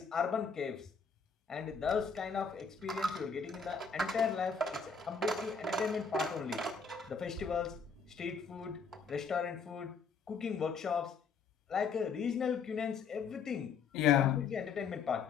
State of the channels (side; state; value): right; quieter; 5.5 dB